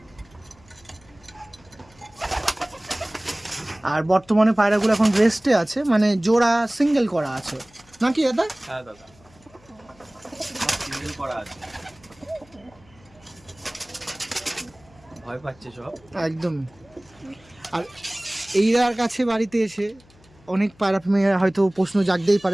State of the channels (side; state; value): left; noise; hum, 28 dB below the sound